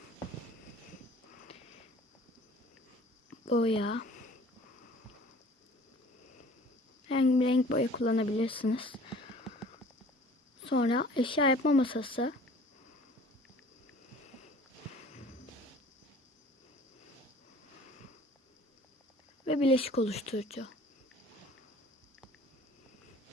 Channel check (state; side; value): normal; both; correlation 0.49